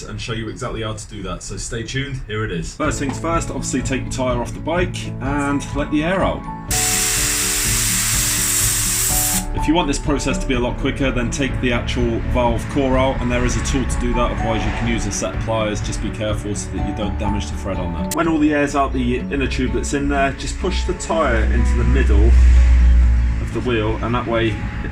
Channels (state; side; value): identical; both; correlation 1.00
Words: and show you exactly how to do that, so stay tuned, here it is. First things first, obviously take the tyre off the bike and let the air out. If you want this process to be a lot quicker, then take the actual valve core out, and there is a tool to do that, otherwise you can use a set of pliers. Just be careful so that you don't damage the thread on there. When all the air's out the inner tube that's in there, just push the tyre into the middle of the wheel, and that way it